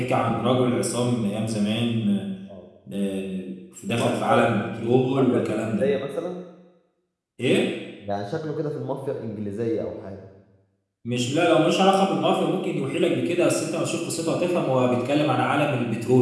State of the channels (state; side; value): identical; both; correlation 1.00